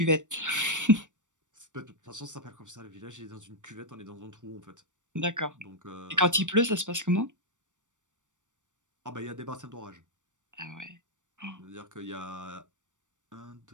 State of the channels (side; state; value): left; late; 0.86 ms